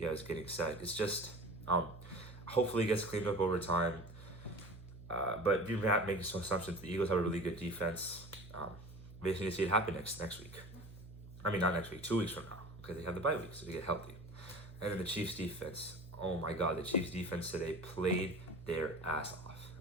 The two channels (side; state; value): right; noise; hum, 16 dB below the sound